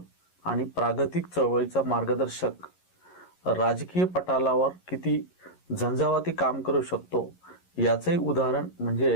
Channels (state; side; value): late; right; 11 ms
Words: आणि प्रागतिक चळवळीचा मार्गदर्शक. राजकीय पटालावर किती झंझावाती काम करू शकतो याचंही उदाहरण